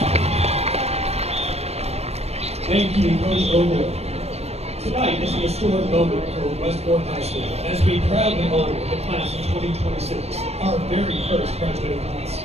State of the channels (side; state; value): left; late; 0.31 ms